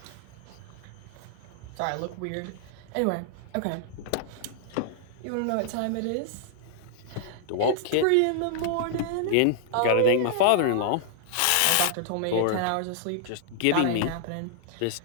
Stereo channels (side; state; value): both; different; correlation -0.01